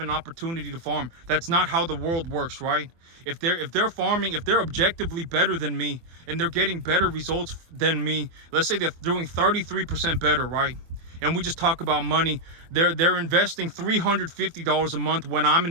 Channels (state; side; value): late; left; 24 ms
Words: an opportunity to farm. That's not how the world works, right? If they're farming, if they're objectively better than me and they're getting better results than me, let's say they're doing 33% better, right? And we just talk about money. They're investing $350 a month when I'm